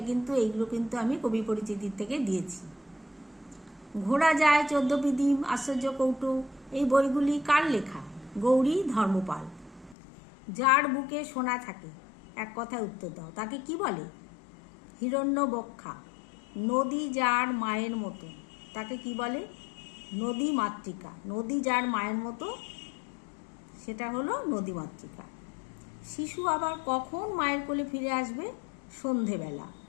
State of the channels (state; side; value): drops out; right; at 10.0 s